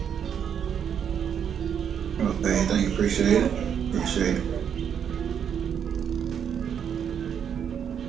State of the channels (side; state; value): left; quieter; 8.2 dB